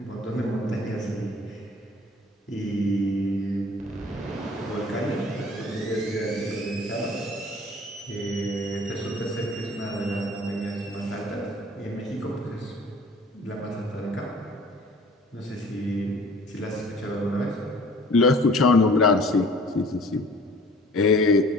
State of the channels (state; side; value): normal; both; correlation 0.49